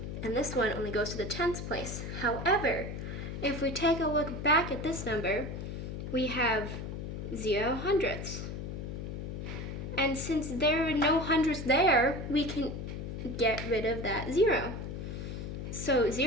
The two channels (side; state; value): left; noise; hum, 6 dB below the sound